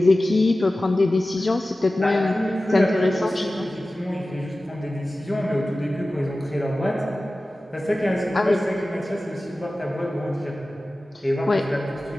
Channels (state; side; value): normal; both; correlation 0.96